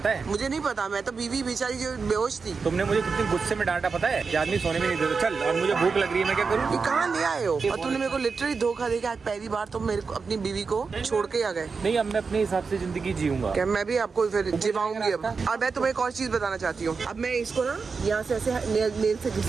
है? मुझे नहीं पता, मैं तो बीवी बेचारी जो बेहोश थी। तुमने मुझे कितनी गुस्से में डांटा पता है कि आदमी सोने में नहीं देता। चल, और मुझे भूख लग रही है, मैं क्या करूँ? ये कहाँ ले आए हो? और तुमने मेरे को लिटरली धोखा दे के आज पहली बार तुम मेरे को अपनी बीवी को छोड़ के आ गए। नहीं, अब मैं अपने हिसाब से जिंदगी जीऊंगा। क्या मैं भी आपको फिर जिवाऊंगी अब। और मैं तुम्हें एक और चीज बताना चाहती हूँ, अब मैं इसको ना यहाँ से ऐसे नेल से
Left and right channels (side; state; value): left; quieter; 4.9 dB